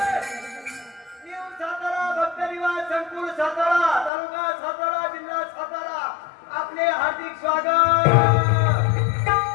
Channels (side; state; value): right; drops out; at 4.1 s